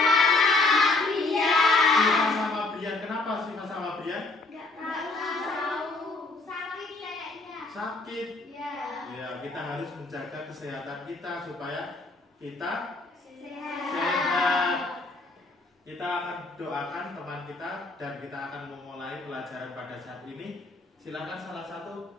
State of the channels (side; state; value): right; quieter; 3.3 dB